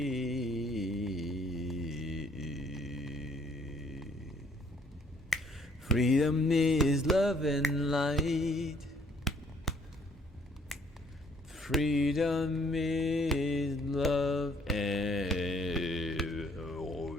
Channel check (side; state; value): both; normal; correlation 0.62